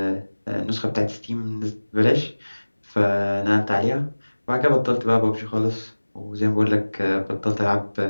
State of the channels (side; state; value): both; inverted; correlation -1.00